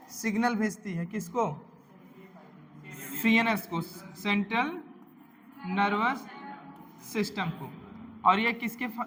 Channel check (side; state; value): both; identical; correlation 1.00